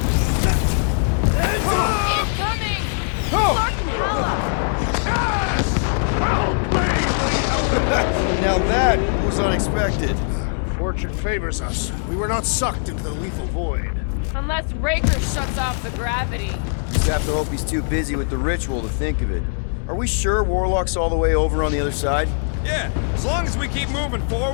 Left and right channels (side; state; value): right; silent; digital silence